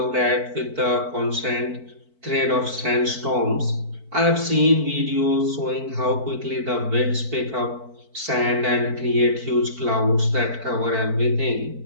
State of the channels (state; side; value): late; left; 4.5 ms